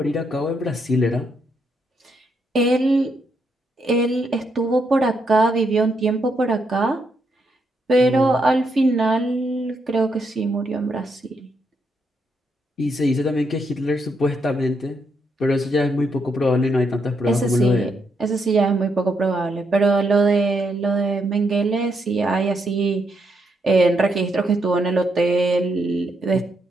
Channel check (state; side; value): normal; both; correlation 0.78